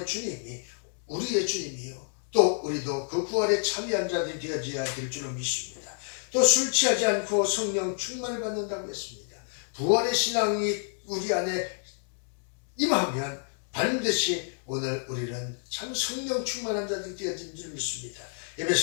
주님이 우리의 주님이요, 또 우리도 그 부활에 참여한 자들이 되어져야 될 줄로 믿습니다. 또 술 취하지 않고 성령 충만을 받는다고 했습니다. 부활의 신앙이 우리 안에 임하면 반드시 오늘 우리는 참 성령 충만한 자들이 되어진 줄 믿습니다.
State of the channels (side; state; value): right; silent; 59 dB below the other